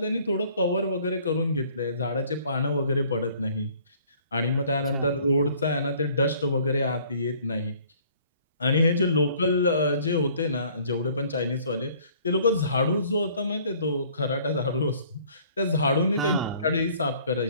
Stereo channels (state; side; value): inverted; both; correlation -0.56